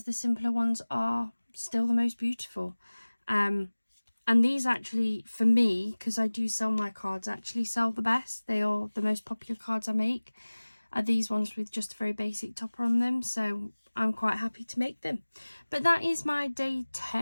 the simpler ones are still the most beautiful. And these actually, for me, because I do sell my cards, actually sell the best. They are the most popular cards I make, are these ones with just a very basic topper on them. So I'm quite happy to make them. But that is my day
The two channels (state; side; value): inverted; both; correlation -1.00